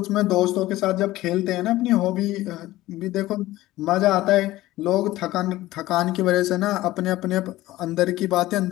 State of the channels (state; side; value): quieter; right; 16.7 dB